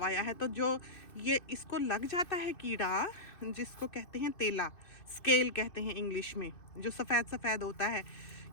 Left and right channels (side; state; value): right; late; 2.5 ms